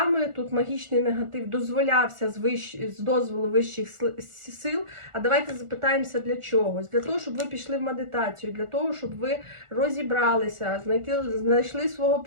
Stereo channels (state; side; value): late; left; 1.4 ms